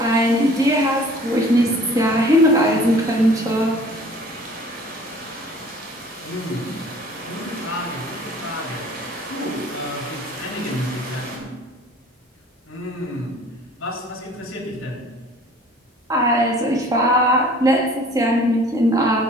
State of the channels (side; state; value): both; normal; correlation 0.50